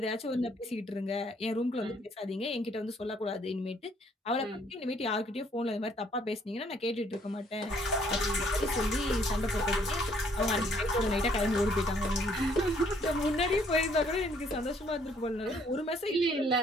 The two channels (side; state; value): both; normal; correlation 0.64